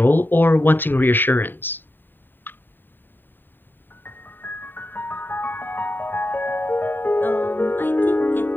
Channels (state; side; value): late; right; 0.093 ms